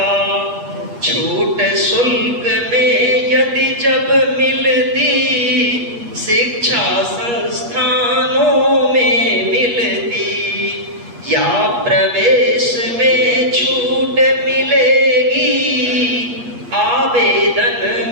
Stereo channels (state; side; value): late; left; 8.4 ms